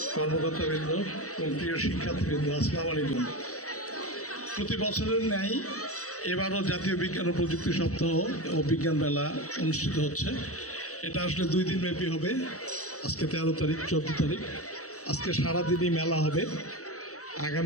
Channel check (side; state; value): right; late; 0.65 ms